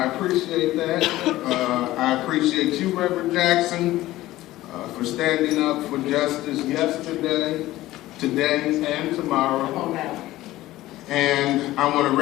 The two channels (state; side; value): quieter; right; 16.3 dB